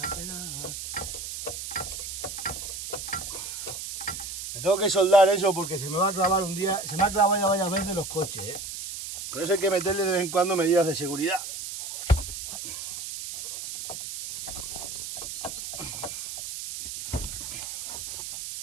penar. Me tengo que soldar eso porque se me va a clavar un día. Se me ha clavado ya varias veces los coches, ¿eh? Por eso hay que meterle de vez en cuando medidas de seguridad.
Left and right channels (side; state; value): right; noise; hiss, 7 dB below the sound